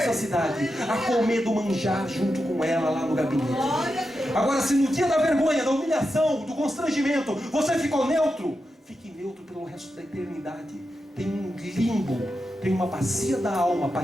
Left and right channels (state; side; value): normal; both; correlation 0.88